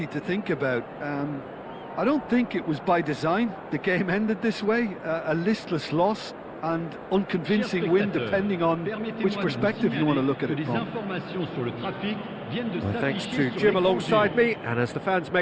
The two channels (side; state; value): both; identical; correlation 1.00